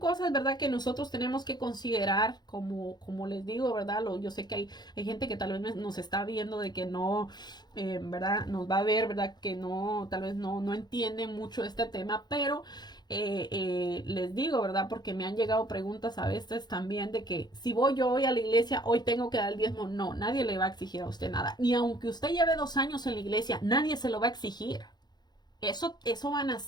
¿verdad? Que nosotros tenemos que considerar, como les digo, ¿verdad? Yo sé que hay gente que tal vez nos está viendo de que no, ¿verdad? Nos va a ver, ¿verdad? Que no, tal vez no entienden mucho este tema, pero les digo, ¿verdad? Porque me han llegado preguntas a veces también de que si voy yo hoy a la iglesia, hoy tengo que dar el diezmo. No, nadie le va a exigir a usted nada. Ni aunque usted lleve 2 años en la iglesia, nadie se lo va a exigir. Eso van a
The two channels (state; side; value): late; right; 0.20 ms